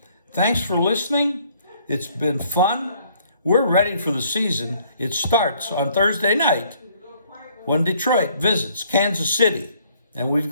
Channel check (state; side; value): inverted; both; correlation -0.63